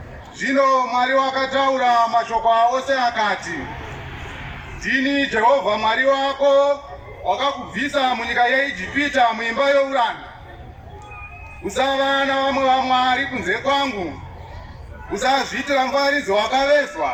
Zvino Mwari wakataura mashoko ose akati, ndini Jehovha Mwari wako, wakakubvisa munyika yeIjipita muimba youranda. Usava navamwe vamwari kunze kwangu. Usazviitira mufananidzo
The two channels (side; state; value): both; identical; correlation 1.00